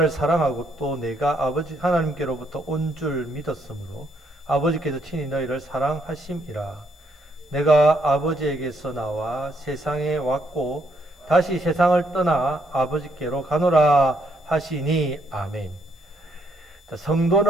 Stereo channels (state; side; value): normal; both; correlation 0.72